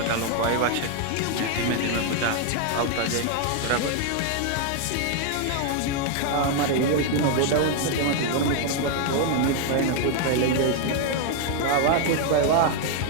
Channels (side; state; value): both; different; correlation 0.00